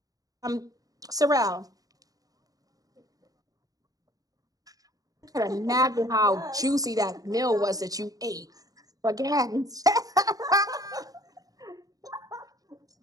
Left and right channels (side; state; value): left; late; 0.18 ms